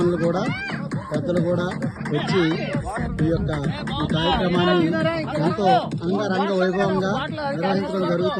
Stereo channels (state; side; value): identical; both; correlation 1.00